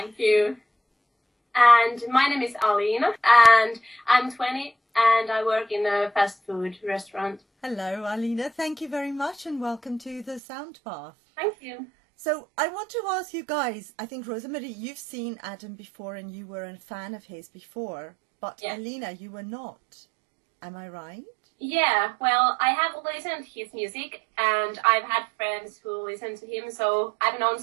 you. And my name is Alina and I'm 20 and I work in a fast food restaurant. Hello, Alina. Thank you very much and welcome to the Sound Path. Thank you. So I want to ask you guys, I think, Rosamari, you've seen Adam before and you were a fan of his before, but Yeah. Alina, you were not. Am I right? Yeah, well, I have listened to his music and I've had friends who listen to him, so I've known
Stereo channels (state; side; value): drops out; left; at 10.4 s